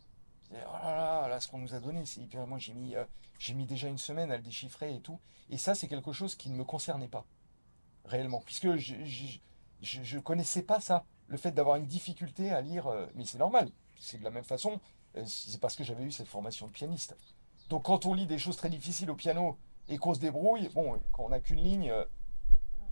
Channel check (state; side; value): inverted; both; correlation -1.00